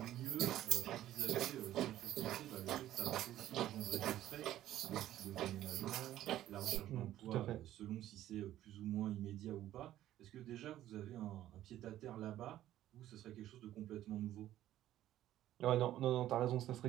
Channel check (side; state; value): left; quieter; 13.2 dB